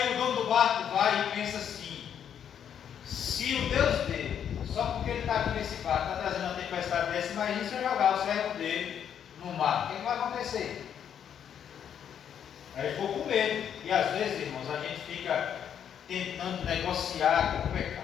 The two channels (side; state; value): right; quieter; 8.8 dB